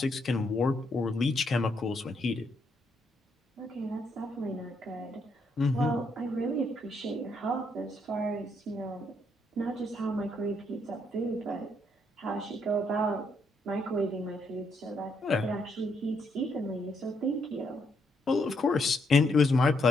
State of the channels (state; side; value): normal; both; correlation 0.75